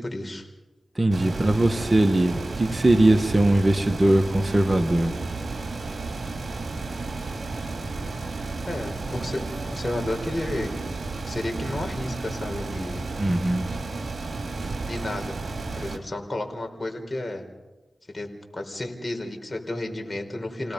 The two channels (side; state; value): both; normal; correlation 0.96